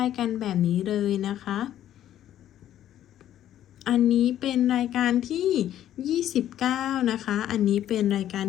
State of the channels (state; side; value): quieter; right; 11.7 dB